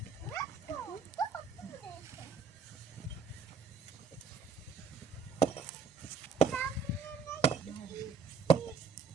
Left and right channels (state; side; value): quieter; left; 5.4 dB